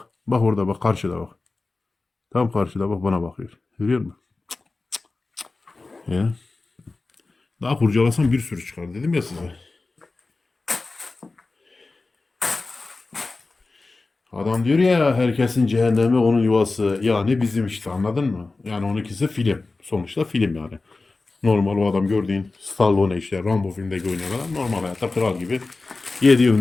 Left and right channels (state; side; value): quieter; right; 3.5 dB